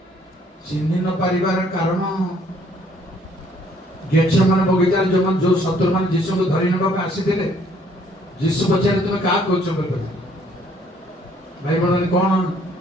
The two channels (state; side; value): normal; both; correlation 0.63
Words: ଚିହ୍ନି ନ ପାରିବାର କାରଣ ଗେଚେମାନେ ବଗିଚାରେ ଯୋଉ ଶତ୍ରୁମାନେ ଯୀଶୁଙ୍କୁ ଧରି ନେବାକୁ ଆସିଥିଲେ, ଯୀଶୁ ପଚାରେ ତୁମେ କାହା କହୁଛ ବୋଲି କହିଲେ। ଭାଇ ଭଉଣୀ କଣ